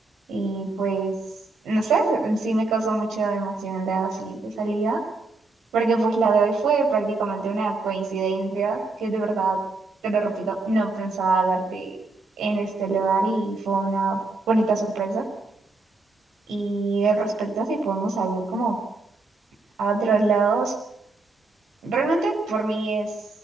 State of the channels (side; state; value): left; quieter; 3.4 dB